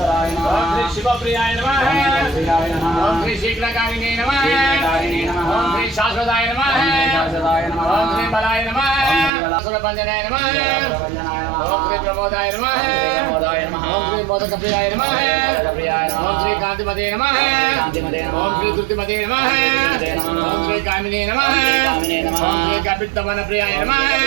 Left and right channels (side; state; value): left; drops out; at 9.3 s